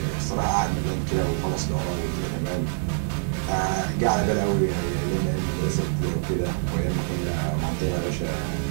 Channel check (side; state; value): left; silent; digital silence